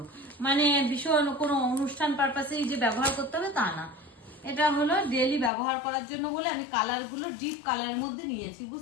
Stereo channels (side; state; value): right; drops out; at 5.5 s